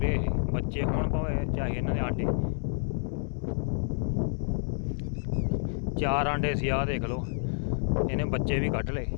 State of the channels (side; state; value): right; silent; 59 dB below the other